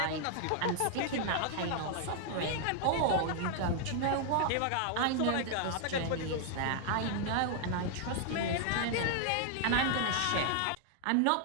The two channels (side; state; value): both; different; correlation 0.00